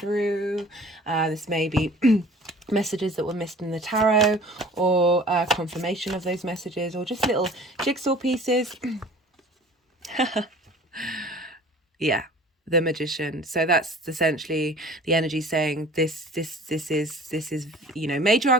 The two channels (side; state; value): both; normal; correlation 0.46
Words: This may be messages that were missed in the tarot, or confirmation of those messages, or just little jigsaw pieces. Yeah, the Magician. So that's essentially the energy saying this is, you know, major